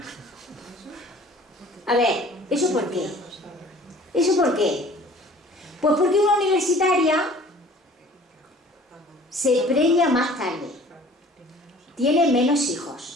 A ver, ¿eso por qué? ¿Eso por qué? Pues porque una universitaria se preña más tarde, tiene menos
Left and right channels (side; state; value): both; normal; correlation 0.49